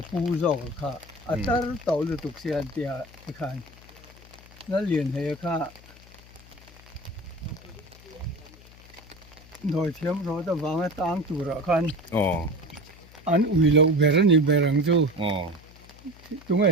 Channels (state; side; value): noise; left; hum, 22 dB below the sound